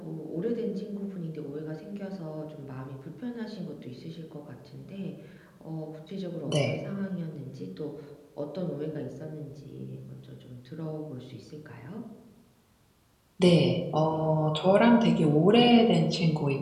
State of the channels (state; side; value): identical; both; correlation 1.00